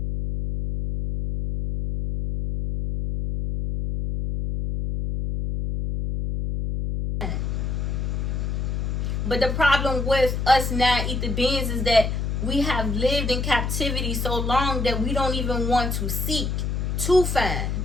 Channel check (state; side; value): noise; left; hum, 1 dB below the sound